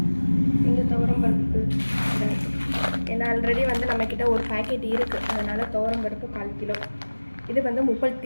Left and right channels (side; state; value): both; inverted; correlation -1.00